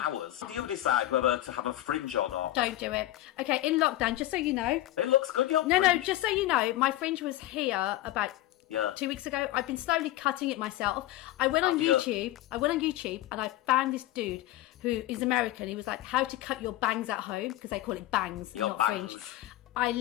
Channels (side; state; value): right; quieter; 15.0 dB